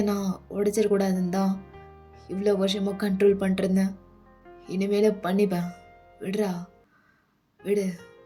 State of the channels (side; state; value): both; identical; correlation 1.00